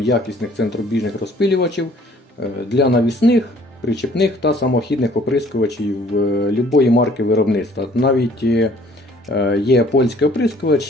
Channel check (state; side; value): normal; both; correlation 0.57